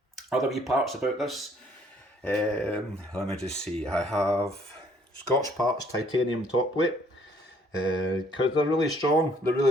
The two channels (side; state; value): both; normal; correlation 0.63